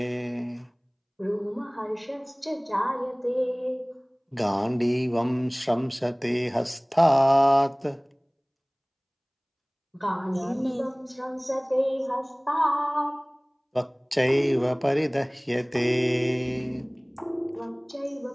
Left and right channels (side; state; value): both; identical; correlation 1.00